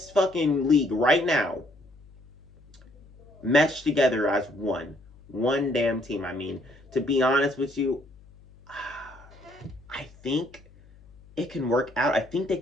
fucking league right now, meshed together as one damn team. I mean, to be honest with you, I think it can work out. I think they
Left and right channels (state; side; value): noise; left; hum, 25 dB below the sound